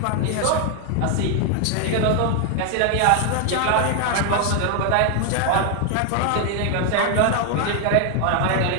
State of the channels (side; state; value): both; different; correlation 0.00